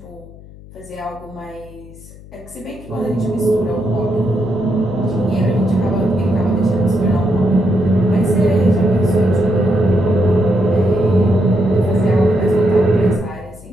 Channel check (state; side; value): noise; left; hum, 20 dB below the sound